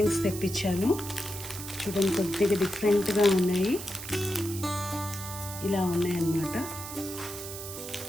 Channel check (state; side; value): noise; right; hiss, 10 dB below the sound